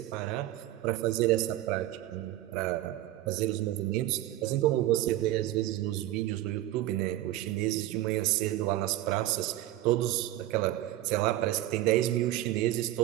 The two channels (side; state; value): left; quieter; 14.8 dB